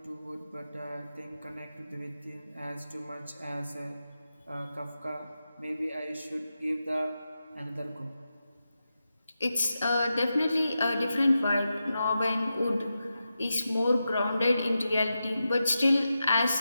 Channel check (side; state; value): both; inverted; correlation -0.90